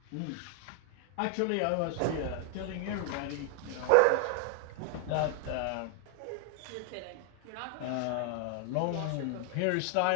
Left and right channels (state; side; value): different; both; correlation 0.00